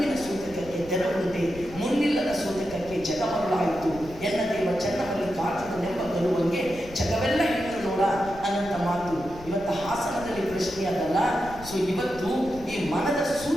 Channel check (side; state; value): left; noise; rumble, 17 dB below the sound